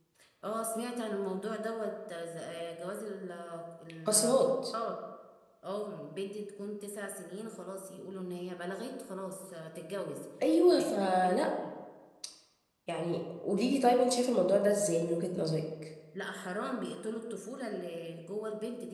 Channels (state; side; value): identical; both; correlation 1.00